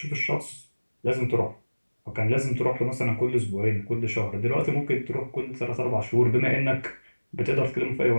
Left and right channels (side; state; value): both; inverted; correlation -1.00